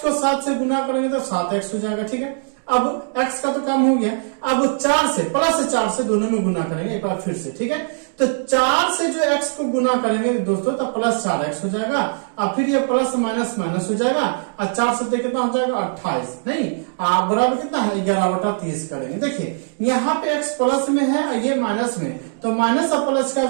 को 7 से गुना करेंगे तो 7x हो जाएगा, ठीक है। अब x का तो काम हो गया, अब 4 से प्लस 4 से दोनों में गुना करेंगे एक बार फिर से, ठीक है। तो 4 से जो x को गुना करेंगे दोस्तों तो प्लस 4x हो जाएगा, और फिर ये प्लस माइनस माइनस हो जाएगा, और 4 से कितना हो जाएगा 28, नहीं बराबर कितना है 11/30 करेंगे। देखिए यहाँ पे x प्लस में है और ये माइनस में, तो माइनस और प्लस क्या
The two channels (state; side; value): silent; left; digital silence